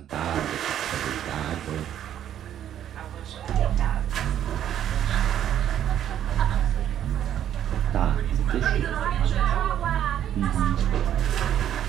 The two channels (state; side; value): quieter; left; 10.5 dB